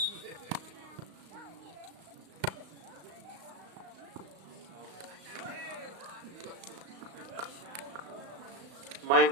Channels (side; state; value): left; late; 35 ms